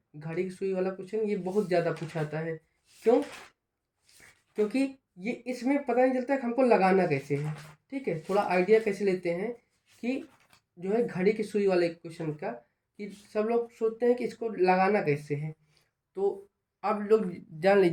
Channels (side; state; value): both; identical; correlation 1.00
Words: घड़ी की सुई वाला क्वेश्चन ये बहुत ज़्यादा पूछा जाता है। क्यों? क्योंकि ये इसमें पता नहीं चलता है कि हमको लगाना कैसे है। ठीक है, थोड़ा आइडिया कैसे लेते हैं कि जो है घड़ी की सुई वाले क्वेश्चन का, कि सब लोग सोचते हैं कि इसको लगाना कैसे है। तो आप लोग जान